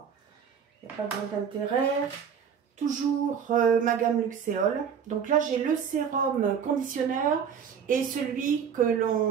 Il n'y a pas grand intérêt. Toujours ma gamme Luxéol. Donc là, j'ai le sérum conditionneur et celui que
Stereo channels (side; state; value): left; quieter; 7.4 dB